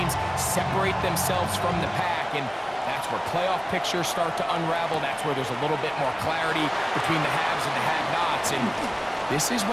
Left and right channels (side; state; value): both; identical; correlation 1.00